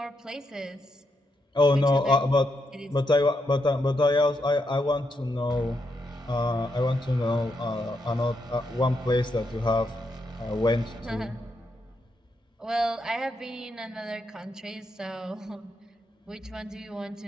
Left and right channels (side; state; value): both; normal; correlation 0.81